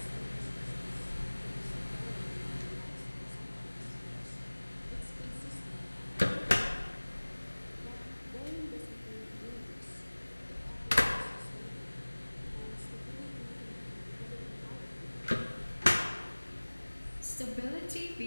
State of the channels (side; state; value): both; inverted; correlation -1.00